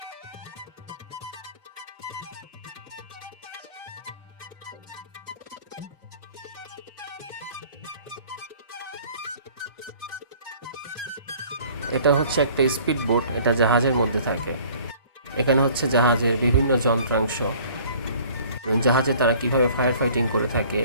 এটা হচ্ছে একটা স্পিড বোট, এটা জাহাজের মধ্যে থাকে। এখানে হচ্ছে জাহাজের বিভিন্ন যন্ত্রাংশ, জাহাজে তারা কিভাবে ফায়ার ফাইটিং করে থাকে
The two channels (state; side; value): inverted; both; correlation -0.52